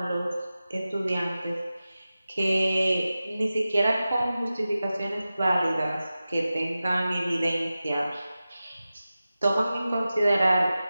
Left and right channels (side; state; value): both; inverted; correlation -0.94